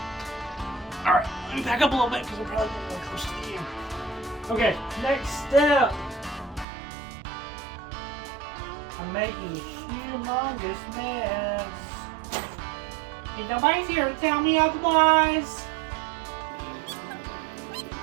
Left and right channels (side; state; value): left; drops out; at 6.7 s